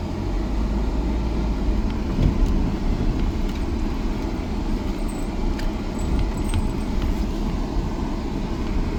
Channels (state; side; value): identical; both; correlation 1.00